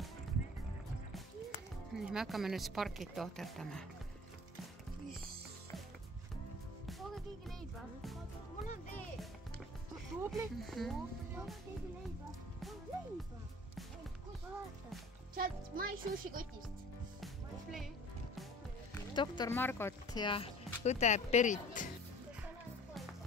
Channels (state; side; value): normal; both; correlation 0.46